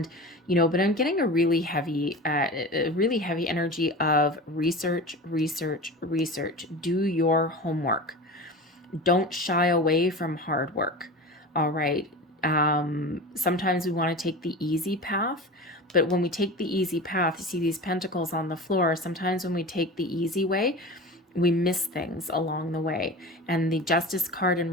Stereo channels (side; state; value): both; normal; correlation 0.32